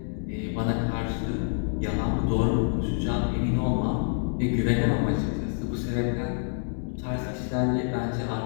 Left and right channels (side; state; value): right; silent; digital silence